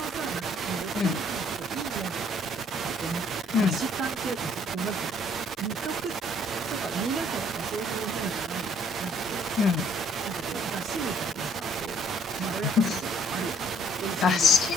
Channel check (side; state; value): both; normal; correlation 0.61